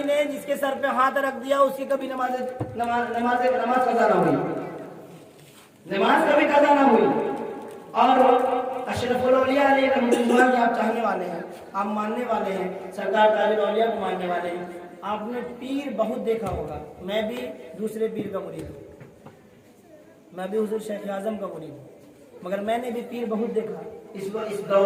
نے جس کے سر پہ ہاتھ رکھ دیا اس کی کبھی نماز قضا نہ ہوئی، نماز کبھی قضا نہ ہوئی۔ اور اشرف الاولیاء علیہ رحمۃ اللہ آپ چاہنے والے ہیں، آپ ماننے والے ہیں، سرکار تاج الاولیاء کو ماننے والے ہیں، آپ نے پیر بہت دیکھا ہوگا۔ میں بھی دوسرے پیر کا مرید ہوں، میں بھی حضور شیخ اعظم کا مرید ہوں، مگر میں نے بھی پیر بہت دیکھا اس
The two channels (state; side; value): identical; both; correlation 1.00